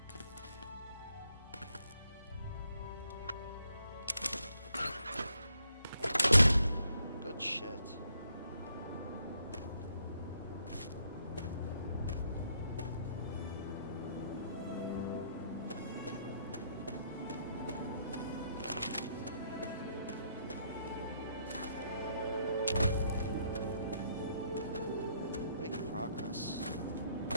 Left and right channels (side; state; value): both; inverted; correlation -0.72